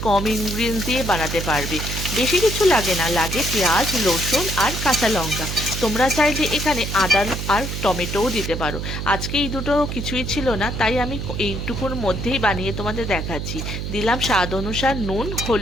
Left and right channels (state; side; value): noise; right; hum, 4 dB below the sound